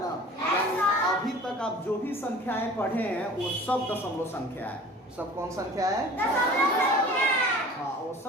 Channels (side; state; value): both; normal; correlation 0.43